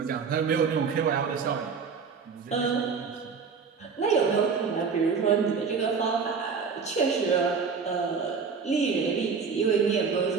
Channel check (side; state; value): left; quieter; 5.6 dB